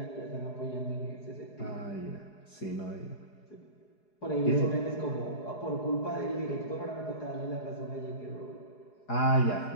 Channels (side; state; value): right; late; 4.8 ms